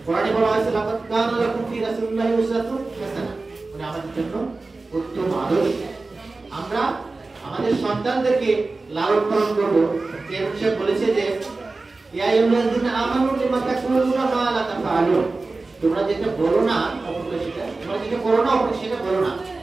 কোরআনে বলা হয়েছে লাকাদ কানা লাকুম ফি রাসূলিল্লাহি উসওয়াতুন হাসানাহ, মানে আমাদের জন্য উত্তম আদর্শ। আমরা আমাদের সন্তানদেরকে লালন পালন করব। যেমন সে বলেছে যে ইয়া আইয়ুহাল্লাযীনা আমানু লিমা তাকুলুনা মা লা তাফআলুন, তোমরা যেটা বলো না অপরকে সেটা, তোমরা যেটা করো না অপরকে সেটা বলো না।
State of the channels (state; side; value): quieter; left; 3.5 dB